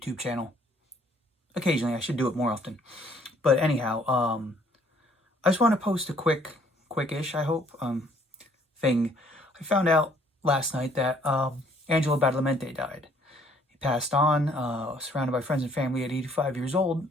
channel. Occasionally, I should do it more often. But anyhow, I just want to post a quickish, I hope, thing. I found out last night that Angelo Badalamenti died. He passed on, surrounded by friends and family at 85 years old.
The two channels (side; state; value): both; normal; correlation 0.62